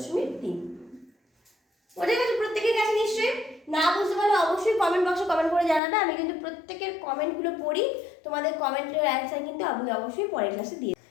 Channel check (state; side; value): drops out; right; at 5.8 s